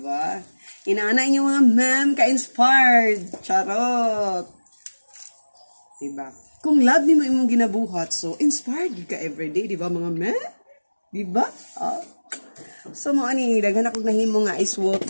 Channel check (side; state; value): both; inverted; correlation -1.00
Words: Inaana inyo mga ma'am ka-inspired. Charot. Di ba? Kung love nimo imong ginabuhat, so inspired ka everyday, di ba mga ma'am? Di ba? So mo ani, daghan ako nahimo nga ice